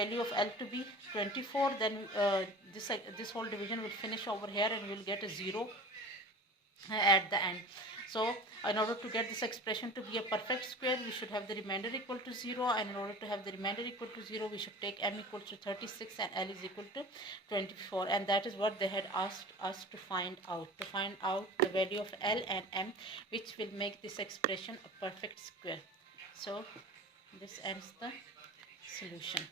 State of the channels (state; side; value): normal; both; correlation 0.37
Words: of L to be 24, then this whole division will finish over here and we will get a 0 at the end. So in order to get this expression to be a perfect square, we should have the remainder equal to 0, and in order to have the remainder equal to 0, we should take m equal to 36 and L is equal to 24, and that is what they had asked us to find out the value of L and m, which will make this expression a perfect square. So this ends the solution